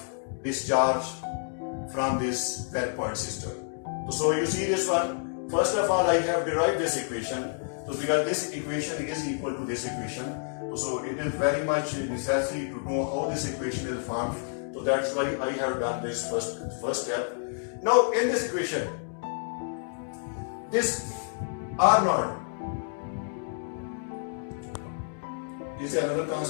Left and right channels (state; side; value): silent; right; digital silence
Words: discharge from this well point system. So you see this one. First of all, I have derived this equation. So because this equation is equal to this equation, so it is very much necessary to know how this equation is formed. So that's why I have done this first step. Now in this equation, this R naught is another